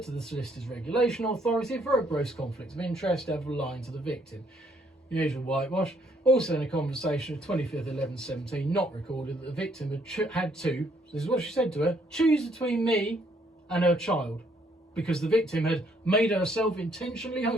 Solicitor's Regulation Authority for a gross conflict of interest and for lying to the victim. The usual whitewash. Also in a conversation of 25th 11/17, not recorded, that the victim had to, this is what she said to her, choose between me and her child, because the victim had made herself intentionally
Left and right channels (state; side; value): normal; both; correlation 0.68